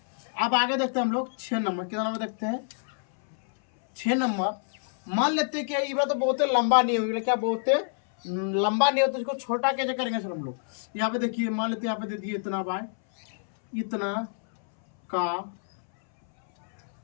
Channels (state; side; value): silent; right; 60 dB below the other